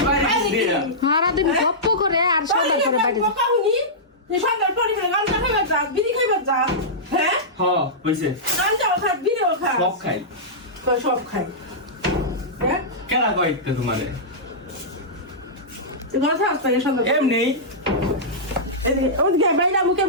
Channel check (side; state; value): both; normal; correlation -0.14